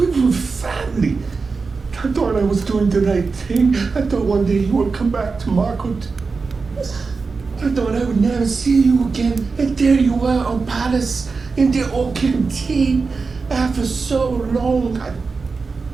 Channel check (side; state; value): left; quieter; 4.5 dB